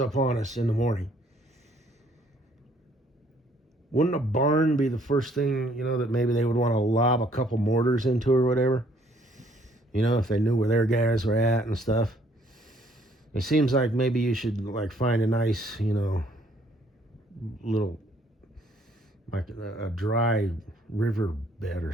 on us in the morning, wouldn't a barn be the first thing, that maybe they would want to lob a couple mortars into or whatever? If they knew where their guys were at and stuff. It seems like maybe you should like find a nice, little, like a dry river bed or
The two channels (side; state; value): both; normal; correlation 0.64